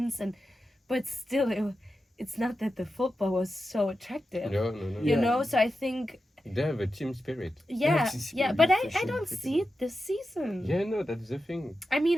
but still, it's not that the football was so attractive, No. you Yeah. know. So I think, They have a team spirit. yeah, it's yeah, really but I efficient, don't freaking see it this season. Yeah, no, that's the thing. I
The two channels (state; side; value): normal; both; correlation 0.91